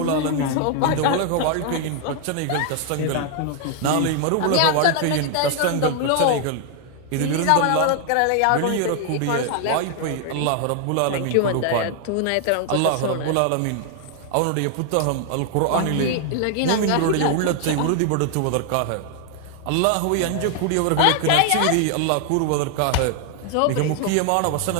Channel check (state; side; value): different; both; correlation 0.00